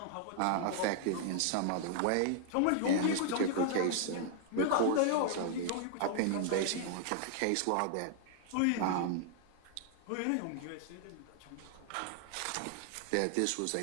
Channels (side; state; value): both; different; correlation -0.01